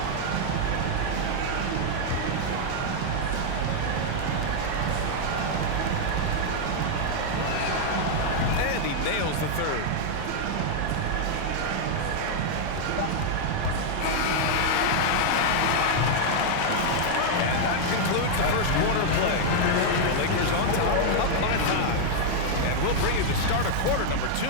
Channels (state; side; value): different; both; correlation -0.01